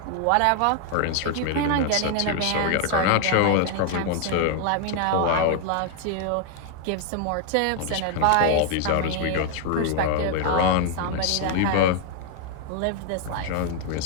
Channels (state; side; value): different; both; correlation 0.00